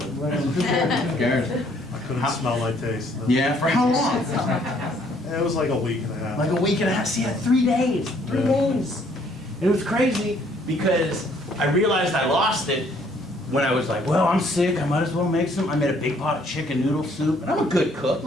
But who cares? I couldn't smell my taste. Yeah, for how long? It was like a week and a half. Like a week and a half. See, 3 days. 3 days. It was crazy because I realized I lost it when I was like, well, I'm sick, I might as well make some. I made a big pot of chicken noodle soup, and I'm a good cook.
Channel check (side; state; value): both; normal; correlation 0.64